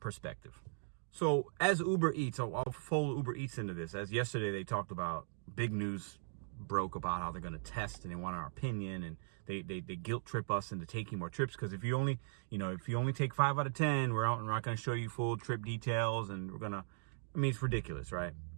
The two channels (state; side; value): silent; left; digital silence